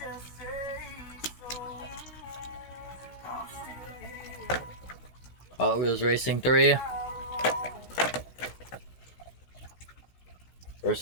Hot Wheels Racing 3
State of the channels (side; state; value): right; late; 16 ms